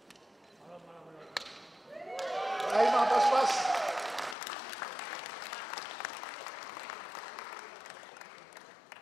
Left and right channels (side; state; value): right; drops out; at 4.4 s